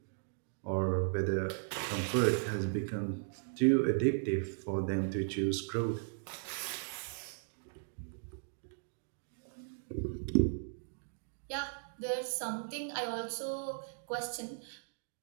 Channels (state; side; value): silent; left; digital silence